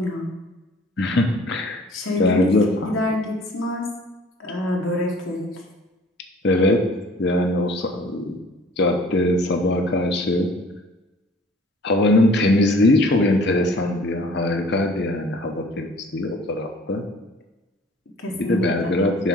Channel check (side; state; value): both; normal; correlation 0.51